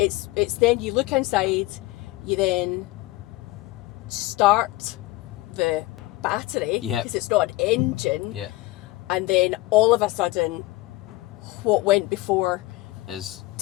then you look inside, you then start the battery, because it's not an engine, and then all of a sudden what went before isn't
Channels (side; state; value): right; quieter; 19.3 dB